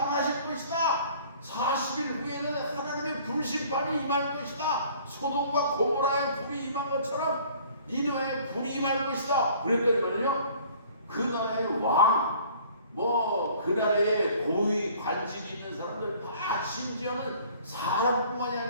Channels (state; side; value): inverted; both; correlation -0.53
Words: 것이다. 40일 후에는 하나님의 불심판이 임할 것이다. 소돔과 고모라의 불이 임한 것처럼 니누에 불이 임할 것이다. 그랬더니 말이요, 그 나라의 왕, 그 나라의 고위 관직이 있는 사람들 다 심지어는 사람뿐만이